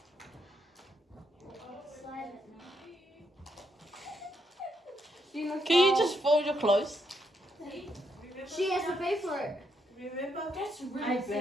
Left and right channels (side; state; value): both; normal; correlation 0.77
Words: Can you just fold your clothes? She has to pay for it. Remember? That's really I